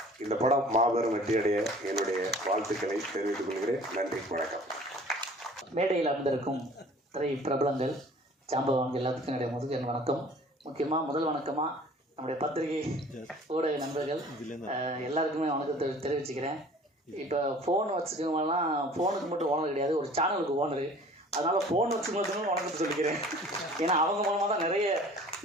இந்த படம் மாபெரும் வெற்றியடைய என்னுடைய வாழ்த்துக்களை தெரிவித்துக் கொள்கிறேன். நன்றி, வணக்கம். மேடையில் அமர்ந்திருக்கும் திரை பிரபலங்கள், ஜாம்பவான்கள் எல்லாத்துக்கும் என்னுடைய முதல் வணக்கம். முக்கியமாக முதல் வணக்கமாக நம்முடைய பத்திரிகை ஊடக நண்பர்கள் எல்லாருக்குமே வணக்கத்தை தெரிவிச்சுக்கிறேன். இப்போ ஃபோன் வச்சுக்கவங்கலாம் ஃபோனுக்கு மட்டும் ஓனர் கிடையாது, ஒரு சேனலுக்கு ஓனரு. அதனால் ஃபோன் வச்சுக்கணும் வணக்கத்தை சொல்லிக்கிறேன். ஏன்னா அவங்க மூலமாக தான்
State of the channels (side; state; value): both; normal; correlation 0.48